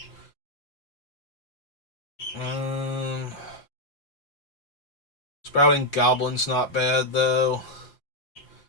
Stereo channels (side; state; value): right; late; 5.8 ms